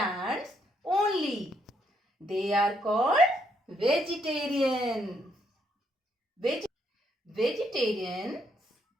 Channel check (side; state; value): both; normal; correlation 0.74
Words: only. They are called vegetarian. Vegetarians